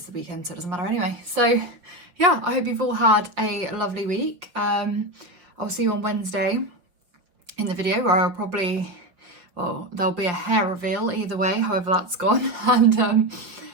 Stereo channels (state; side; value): late; left; 5.5 ms